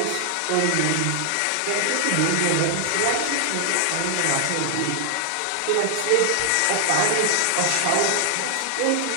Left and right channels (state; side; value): different; both; correlation 0.00